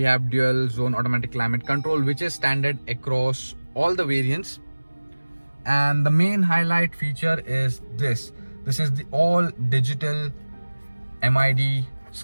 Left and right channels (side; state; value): both; inverted; correlation -1.00